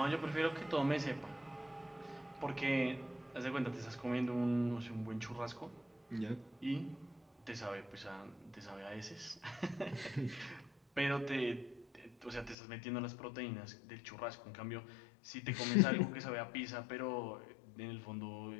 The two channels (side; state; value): right; drops out; at 12.6 s